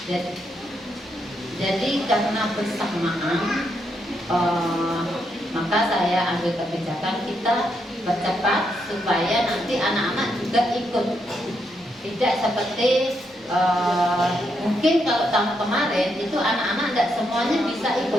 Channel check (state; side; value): normal; both; correlation 0.79